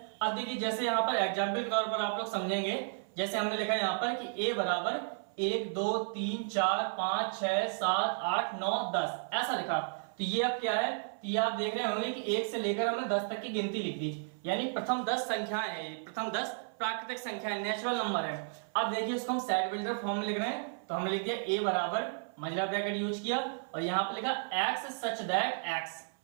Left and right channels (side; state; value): left; silent; 56 dB below the other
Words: अब देखिए जैसे यहाँ पर एग्जाम्पल के तौर पर आप लोग समझेंगे, जैसे हमने लिखा है यहाँ पर कि ए बराबर 1 2 3 4 5 6 7 8 9 10 ऐसा लिखा। तो ये अब क्या है, तो ये आप देख रहे होंगे कि 1 से लेकर हमने 10 तक की गिनती लिख दी, यानी प्रथम 10 संख्याएं है, प्रथम 10 प्राकृतिक संख्या नेचुरल नंबर है। अब देखिए इसको हम सेट बिल्डर फॉर्म में लिख रहे हैं, तो हमने लिख दिया ए बराबर मंझला ब्रैकेट यूज किया और यहाँ पे लिखा एक्स सच दैट